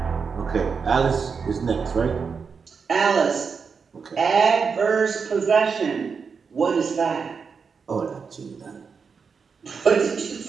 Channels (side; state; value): left; quieter; 5.6 dB